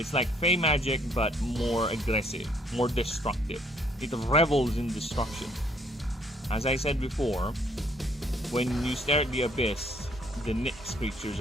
like Fey magic, but more aggressive, more destructive. It revels in destruction. As I said before, when you stare at the abyss, the Nyx creatures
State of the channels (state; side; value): normal; both; correlation 0.65